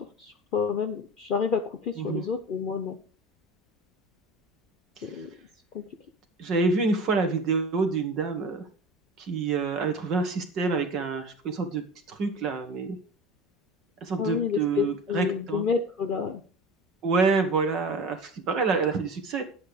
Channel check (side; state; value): both; normal; correlation 0.34